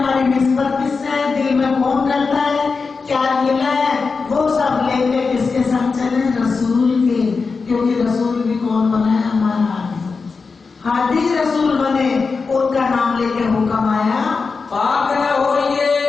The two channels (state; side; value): quieter; right; 4.7 dB